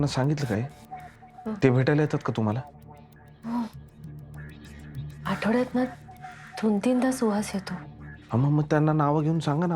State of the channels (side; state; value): both; identical; correlation 1.00